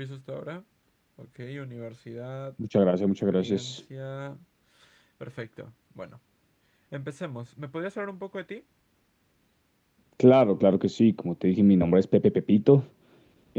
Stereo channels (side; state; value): both; identical; correlation 1.00